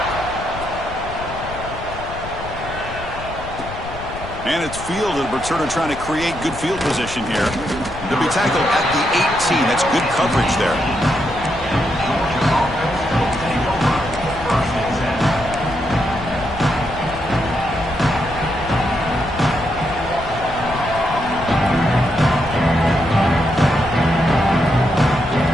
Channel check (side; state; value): left; noise; rumble, 12 dB below the sound